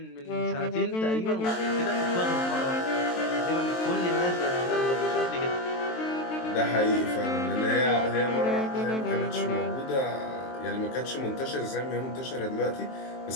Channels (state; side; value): late; right; 23 ms